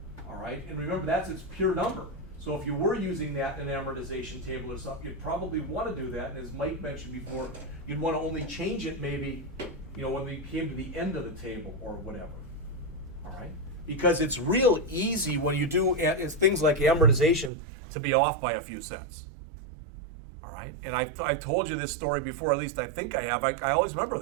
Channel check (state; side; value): drops out; left; at 17.5 s